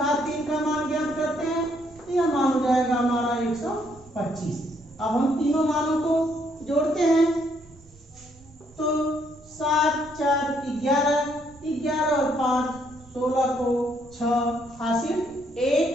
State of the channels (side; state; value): right; noise; rumble, 26 dB below the sound